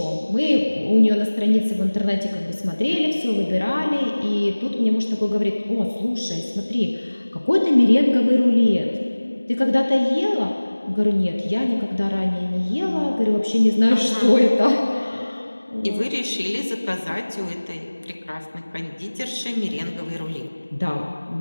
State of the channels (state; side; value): inverted; both; correlation -1.00